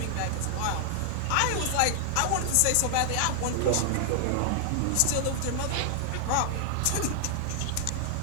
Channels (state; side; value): different; both; correlation 0.00